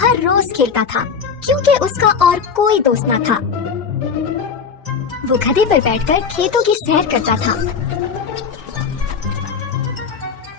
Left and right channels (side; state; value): right; quieter; 6.1 dB